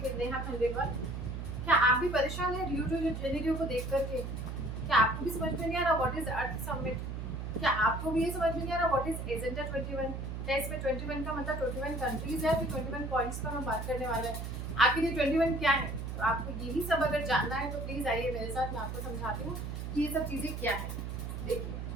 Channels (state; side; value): noise; right; hum, 5 dB below the sound